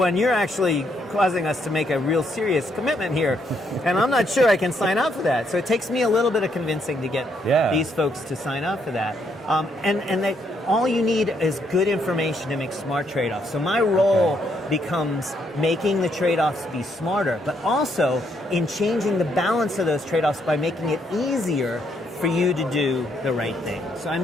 you're actually causing us to make a real serious commitment here, and I'm not sure I can sign up for that. So it takes me a little bit of convincing to get these folks to sign up for that. And that all you need is good information to make smart trade-offs. So my role becomes making the trade-offs be smarter, but also in changing the balance of those trade-offs by making it easier for you to do the right thing. So I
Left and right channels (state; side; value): normal; both; correlation 0.74